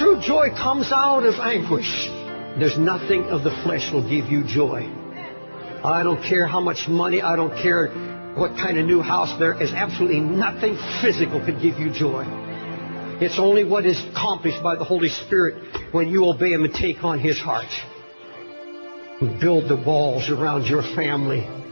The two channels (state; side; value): inverted; both; correlation -1.00